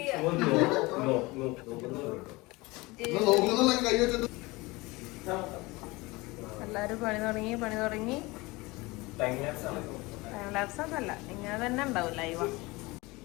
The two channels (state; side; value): quieter; right; 22.9 dB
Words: എല്ലാരും പണി തുടങ്ങി. ടൈം ലാപ്സ് ഒന്നല്ല, ഇങ്ങനെ തന്നെ ഉണ്ടാവും ലൈവ്.